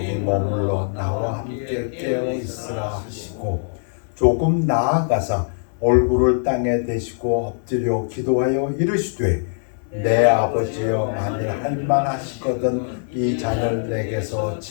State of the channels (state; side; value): silent; right; 64 dB below the other